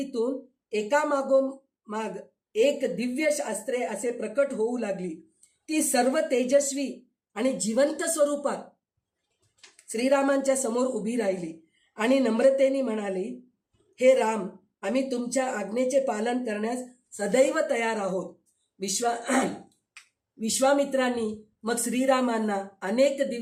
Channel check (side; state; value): both; identical; correlation 1.00